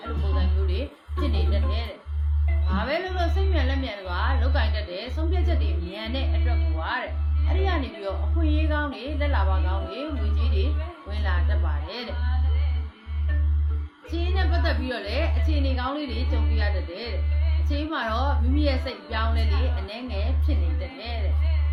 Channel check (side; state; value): both; identical; correlation 1.00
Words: အဲ့လိုပုံစံမျိုးတွေဖြစ်နေတတ်တယ်တဲ့ဘာပဲလို့စိတ်မြန်လက်မြန်တွေကလောက်ကင်တတ်တယ်ဆုံးဖြတ်ချက်တွေမြန်တဲ့အတွက်ကိုပါတဲ့အဲ့ဒီကနေပြီးတော့အခွင့်အရေးကောင်းတွေလက်လာပါကောင်းတွေငွေကြီးတွေဝင်လာတတ်ပါတယ်တဲ့အခြေအနေနဲ့ပတ်သက်ပြီးတော့လည်းအခြေအနေကောင်းလေးတွေကြုံပြရတတ်တယ်တဲ့အချိန်မှာတော့မိမိရဲ့စိတ်ပြောင်းလဲလေးအနှဲငယ်ဖြစ်နေတတ်တယ်တဲ့